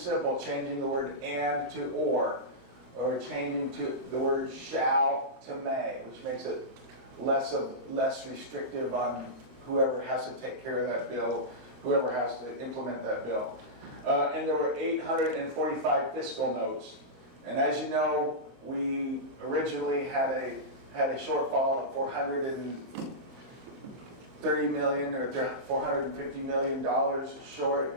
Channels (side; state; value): left; late; 23 ms